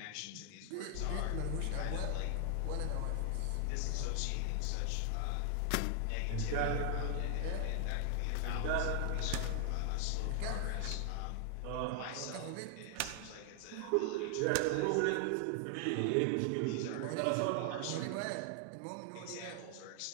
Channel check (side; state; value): both; different; correlation 0.00